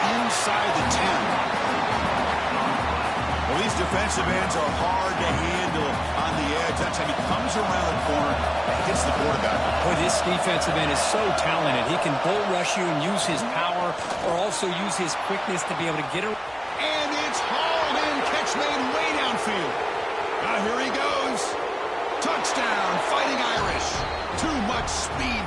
inside the 10. Well, these defensive ends are hard to handle on the edge. That time he comes around the corner and hits the quarterback. Boy, this defensive end is so talented. He can bull rush you and use his power, or also use his quickness to be able to get around. And it's hauled in. Catch made way downfield. Now here he goes. Touchdown, Fighting Irish. Too much speed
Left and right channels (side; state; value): both; identical; correlation 1.00